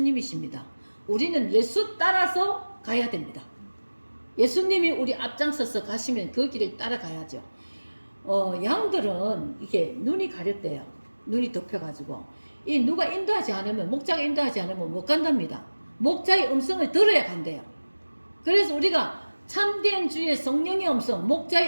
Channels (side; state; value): both; inverted; correlation -1.00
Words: 우리는 예수 따라서 가야 됩니다. 예수님이 우리 앞장서서 가시면 그 길을 따라가야죠. 양들은 이게 눈이 가렸대요. 눈이 덮여가지고 이 누가 인도하지 않으면, 목자가 인도하지 않으면 못 간답니다. 목자의 음성을 들어야 간대요. 그래서 우리가 참된 주의 성령의 음성,